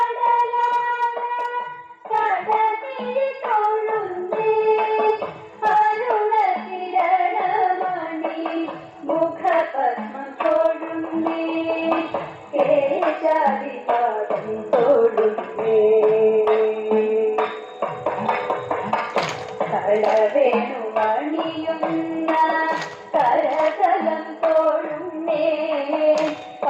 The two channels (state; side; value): identical; both; correlation 1.00